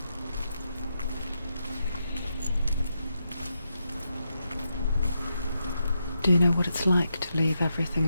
Do you know what it's like to leave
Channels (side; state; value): both; inverted; correlation -0.84